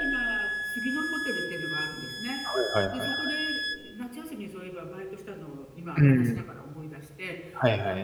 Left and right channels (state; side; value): identical; both; correlation 1.00